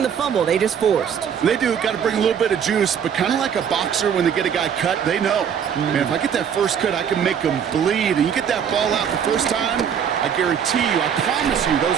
the fumble. They just forced. They do. Got to bring a little bit of juice, but kind of like a boxer when they get a guy cut, they know. Man, if I get that first cut, I can make them bleed. And you get that ball out the first time, I guarantee you, I promise you,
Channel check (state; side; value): quieter; left; 8.0 dB